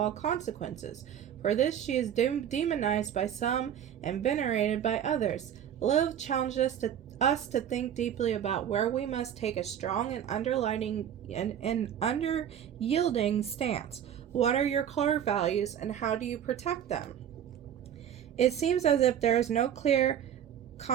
consequences. For this she is demonized by some and venerated by others. Lilith challenges us to think deeply about where we must take a strong and under-yielding stance. What are your core values and how do you protect them? It seems as if there is no clear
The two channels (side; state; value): left; quieter; 9.6 dB